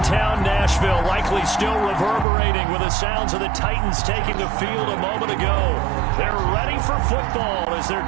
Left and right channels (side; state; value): left; drops out; at 2.2 s